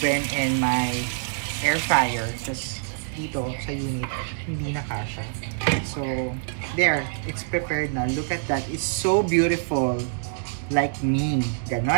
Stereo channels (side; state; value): left; silent; digital silence